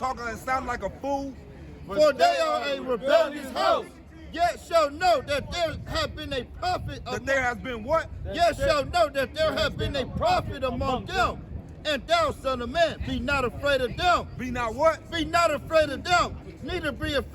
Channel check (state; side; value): identical; both; correlation 1.00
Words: and sounding like a fool? For they are a rebellious house. Yet shall know that there have been a prophet. That there has been what? Yet shall know that there have been a prophet among them. And thou, son of man, be not afraid of them. Be not what? Be not afraid of them. Neither be